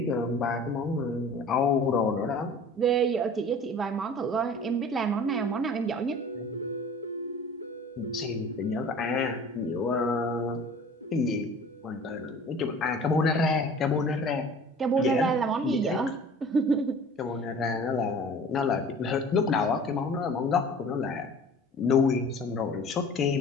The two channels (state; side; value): normal; both; correlation 0.44